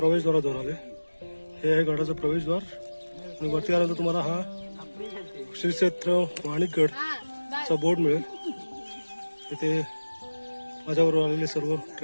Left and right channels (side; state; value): both; inverted; correlation -1.00